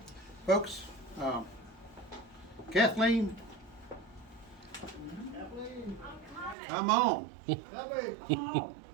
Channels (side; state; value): left; drops out; at 6.6 s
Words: Folks, Kathleen, come on.